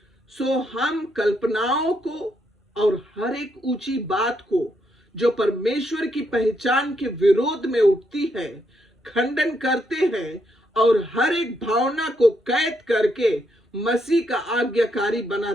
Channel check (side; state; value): both; normal; correlation 0.77